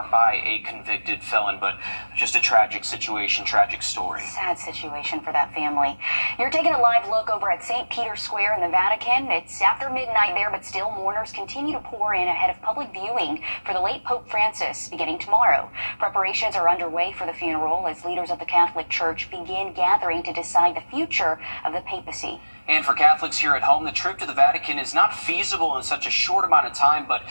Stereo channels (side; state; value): both; inverted; correlation -1.00